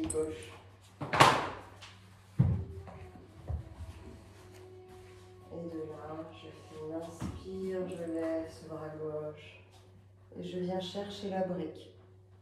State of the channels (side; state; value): both; identical; correlation 1.00